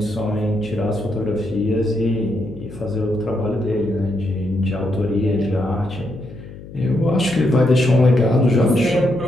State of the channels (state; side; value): noise; left; hum, 15 dB below the sound